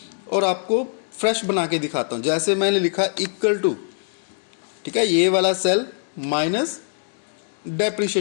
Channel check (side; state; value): right; silent; 64 dB below the other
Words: और आपको फ्रेश बना के दिखाता हूँ। जैसे मैंने लिखा इक्वल टू, ठीक है, ये वाला सेल माइनस